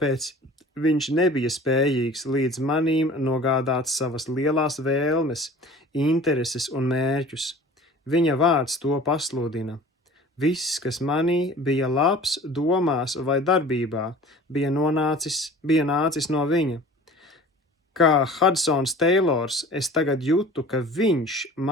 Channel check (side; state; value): both; normal; correlation 0.43